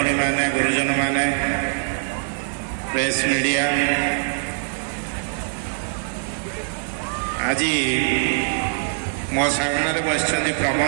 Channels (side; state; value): left; silent; digital silence